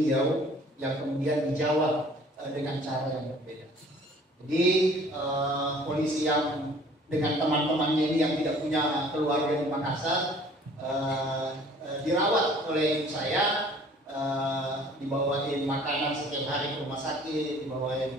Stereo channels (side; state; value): both; normal; correlation 0.52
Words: yang kemudian dijawab dengan cara yang berbeda. Jadi polisi yang dengan teman-temannya ini yang tidak punya keluarga di Makassar dirawat oleh ibu saya, dibawain makanan setiap hari ke rumah sakit,